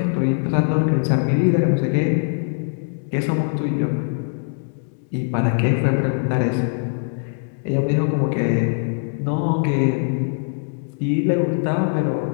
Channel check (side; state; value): right; silent; digital silence